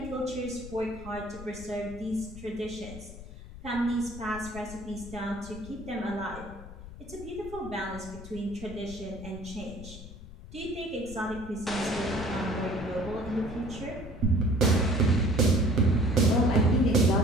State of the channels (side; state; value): left; noise; rumble, 14 dB below the sound